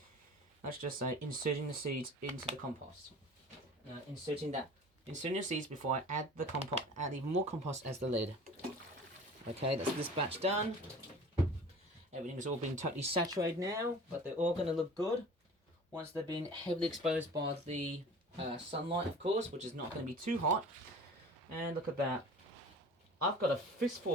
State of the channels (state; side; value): normal; both; correlation 0.42